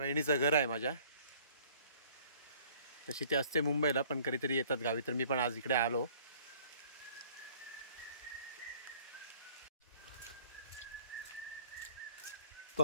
घर आहे माझ्या। तशी ते असते मुंबईला पण कधीतरी येतात गावी, तर मी पण आज इकडे आलो।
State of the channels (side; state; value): both; inverted; correlation -0.55